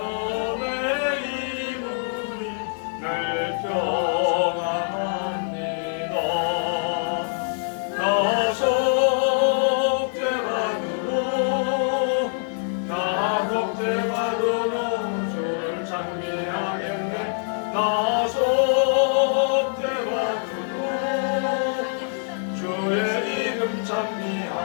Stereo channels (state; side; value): silent; right; digital silence